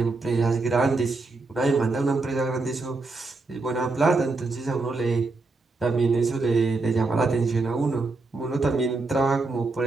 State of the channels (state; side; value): quieter; left; 3.5 dB